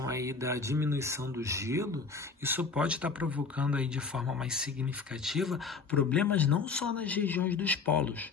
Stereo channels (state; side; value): quieter; right; 4.8 dB